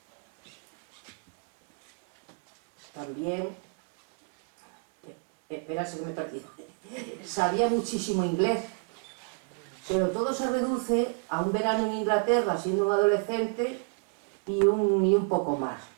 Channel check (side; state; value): left; quieter; 35.3 dB